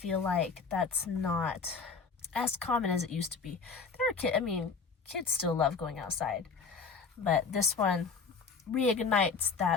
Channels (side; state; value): right; quieter; 5.1 dB